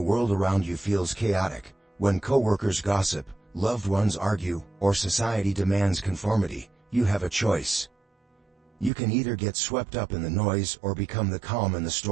world around you feels chaotic, when coworkers gossip, loved ones argue, or society demands conformity, you have a choice. You can either get swept up in the noise or become the calm in the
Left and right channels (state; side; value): drops out; left; at 8.9 s